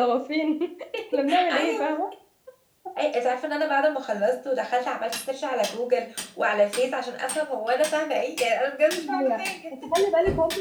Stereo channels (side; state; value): both; identical; correlation 1.00